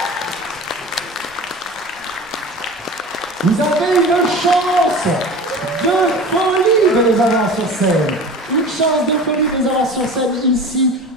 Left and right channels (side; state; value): both; normal; correlation 0.36